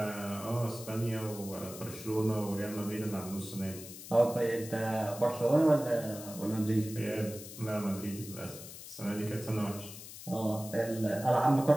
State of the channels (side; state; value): left; noise; hiss, 13 dB below the sound